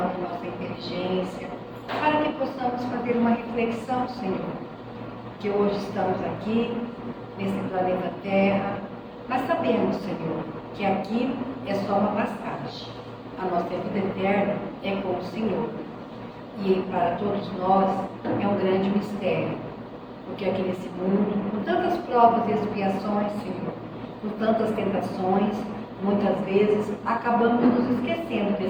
nossa inteligência, para que possamos fazer uma reflexão, Senhor, que hoje estamos aqui, nesse planeta Terra, mas sabemos, Senhor, que aqui é só uma passagem. A nossa vida eterna é com o Senhor. E para todos nós é um grande mistério, porque aqui nesse mundo, com tantas provas e expiações, Senhor, com tantas tentações, muitas vezes acabamos nos esquecendo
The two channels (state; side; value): identical; both; correlation 1.00